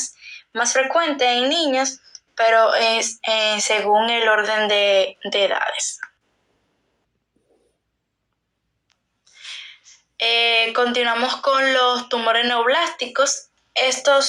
más frecuentes en niños, pero es según el orden de edades. Continuamos con los tumores neoplásticos.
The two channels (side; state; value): both; identical; correlation 1.00